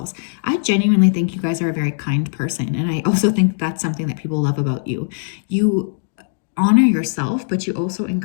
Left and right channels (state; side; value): silent; right; digital silence